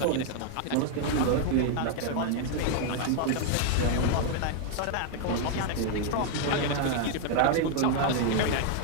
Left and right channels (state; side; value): different; both; correlation 0.00